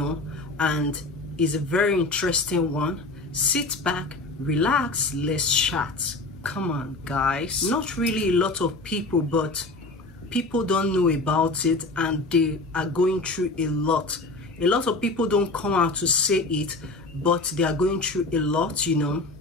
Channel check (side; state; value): right; quieter; 3.1 dB